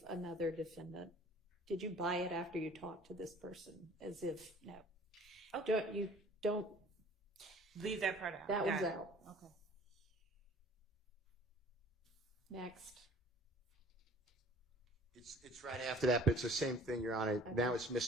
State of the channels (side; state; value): both; normal; correlation 0.50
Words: another defendant. Did you buy it after you talked to this person? As if no. Okay. Don't leave that part out. That Got one's it. out. Okay. Next. It's right after that, but it's the same thing, Your Honor. Okay. Now it's